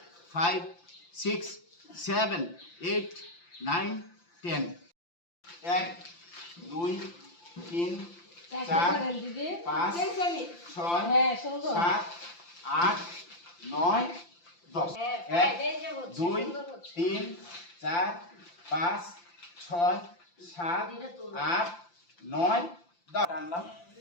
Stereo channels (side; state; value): right; late; 5.8 ms